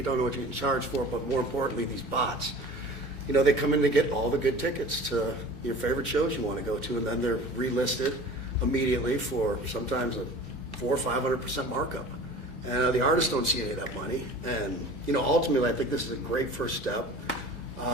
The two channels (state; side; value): normal; both; correlation 0.41